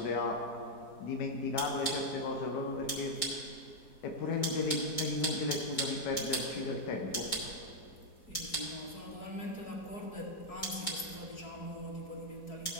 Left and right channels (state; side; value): late; right; 4.2 ms